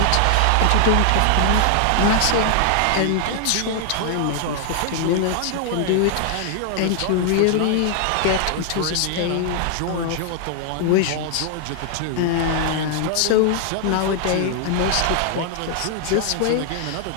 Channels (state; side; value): different; both; correlation 0.00